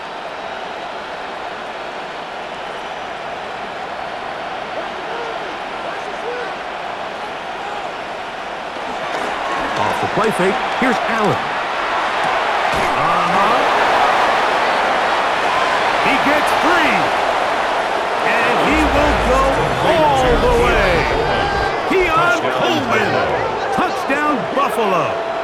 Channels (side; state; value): both; identical; correlation 1.00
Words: Off the play fake, here's Allen. He gets free. And he will go all the way. Keon Coleman. Touchdown, Buffalo.